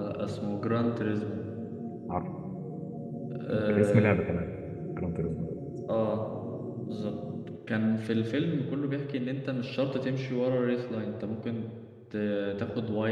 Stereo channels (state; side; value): identical; both; correlation 1.00